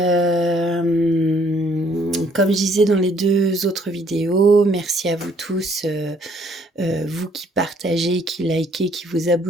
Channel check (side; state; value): both; normal; correlation 0.64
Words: Comme je disais dans les 2 autres vidéos, merci à vous tous, vous qui partagez, qui likez, qui vous